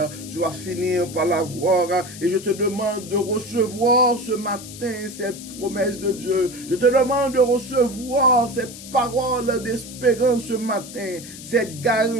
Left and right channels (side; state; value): left; noise; hiss, 14 dB below the sound